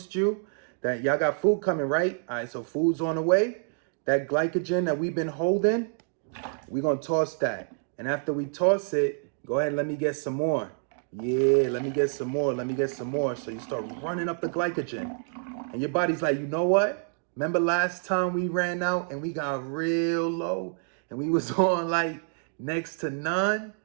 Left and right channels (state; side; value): silent; left; 59 dB below the other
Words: you that y'all got food coming, right? All right, so food's on the way. That glycogen that we've been holding, we're going to toss that. And after we toss it, go ahead and let me get some more. Yeah, let me get some more. So you start running up the glycogen. And your body's like, you know what? Remember last time we ran out and we got real low and we was on like next to none?